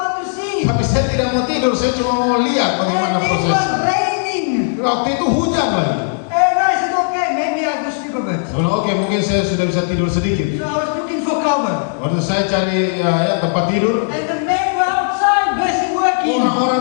to see. Tapi saya tidak mau tidur, saya cuma mau lihat bagaimana And it proses. was raining. Waktu itu hujan lagi. And I said, okay, maybe I will sleep a bit. Oke, mungkin saya sudah bisa tidur sedikit. So I was looking for cover. Waktu saya cari ya, tempat tidur, And the men were outside, busy working. orang-orang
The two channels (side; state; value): right; silent; digital silence